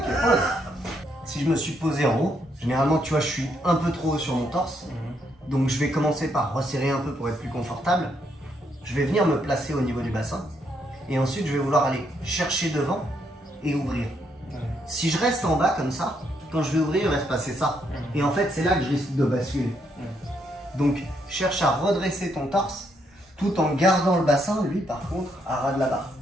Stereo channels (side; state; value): both; normal; correlation 0.75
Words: Si je me suis posé en haut, généralement, tu vois, je suis un peu trop haut sur mon torse. Donc, je vais commencer par resserrer un peu pour être plus confortable. Je vais venir me placer au niveau du bassin. Et ensuite, je vais vouloir aller chercher devant et ouvrir. Si je reste en bas comme ça, quand je vais ouvrir, il va se passer ça. Et en fait, c'est là que je risque de basculer. Donc, cherche à redresser ton torse tout en gardant le bassin, lui, par contre, à ras de la barre.